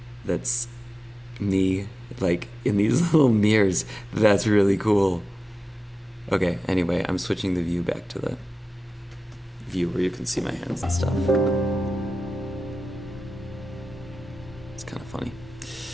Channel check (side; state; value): both; normal; correlation 0.95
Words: that's me, like, in these little mirrors. That's really cool. Okay, anyway, I'm switching the view back to the view where you can see my hands and stuff. It's kind of funny.